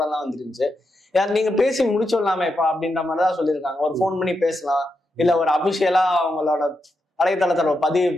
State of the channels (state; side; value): normal; both; correlation 0.85